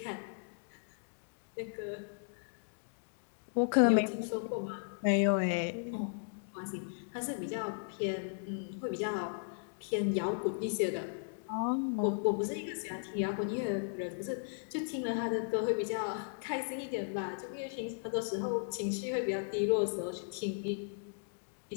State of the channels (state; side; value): silent; right; digital silence